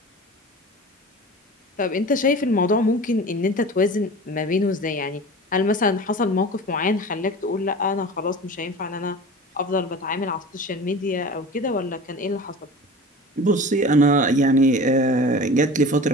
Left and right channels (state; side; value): normal; both; correlation 0.36